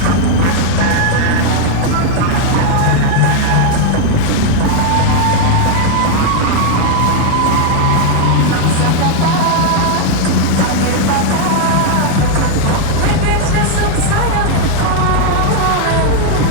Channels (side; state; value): both; different; correlation 0.00